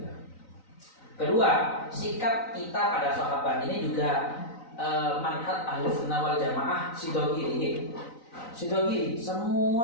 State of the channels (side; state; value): right; late; 3.9 ms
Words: Kedua, sikap kita pada sahabat ini juga manhaj Ahlussunnah wal Jamaah Sidogiri. Sidogiri, semua